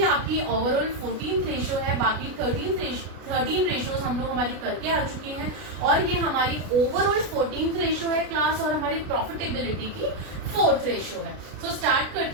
आपकी ओवरऑल 14th रेशियो है। बाकी 13 रेशियोज हम लोग हमारी करके आ चुकी हैं और ये हमारी ओवरऑल 14th रेशियो है क्लास, और हमारी प्रॉफिटेबिलिटी की 4th रेशियो है। सो स्टार्ट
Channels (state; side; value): late; left; 33 ms